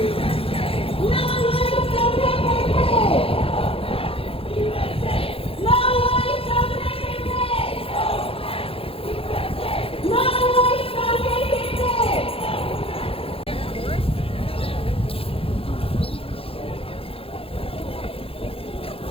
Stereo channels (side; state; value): right; late; 0.27 ms